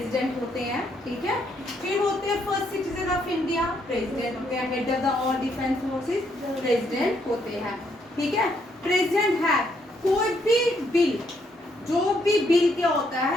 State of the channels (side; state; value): both; normal; correlation 0.73